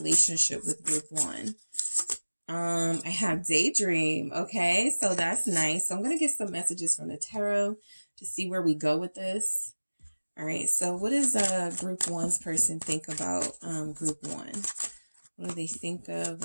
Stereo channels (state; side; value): inverted; both; correlation -1.00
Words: with group one? I have daydream. Okay, so that's nice. So I'm going to get some messages from the tarot to see where we go with this. All right, so what does group one's person think about group one? What do they think of